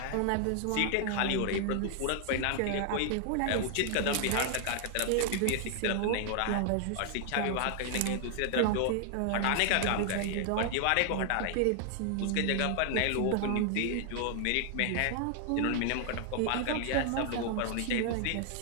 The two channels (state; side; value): different; both; correlation 0.00